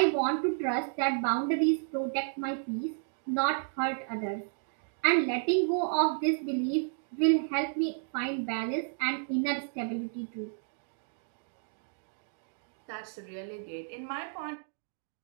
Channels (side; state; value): left; silent; digital silence